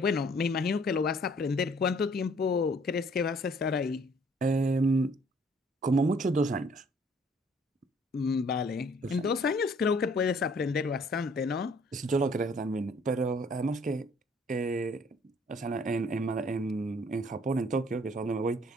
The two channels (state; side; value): normal; both; correlation 0.59